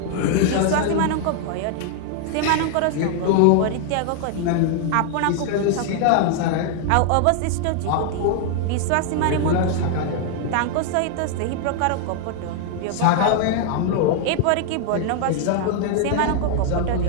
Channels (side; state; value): both; different; correlation 0.00